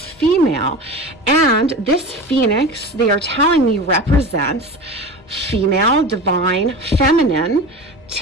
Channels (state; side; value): normal; both; correlation 0.31